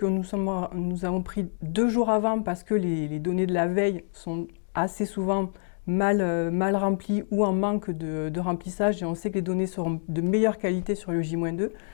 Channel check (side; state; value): right; silent; digital silence